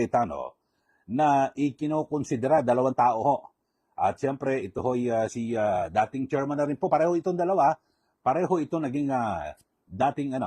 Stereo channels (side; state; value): both; identical; correlation 1.00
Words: na ikinokonsidera dalawang tao ho. At siyempre, ito ho'y si dating chairman na rin po. Pareho itong dalawa. Pareho ito naging dating